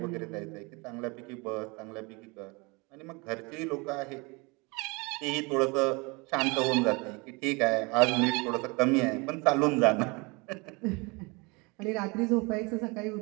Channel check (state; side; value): quieter; left; 27.8 dB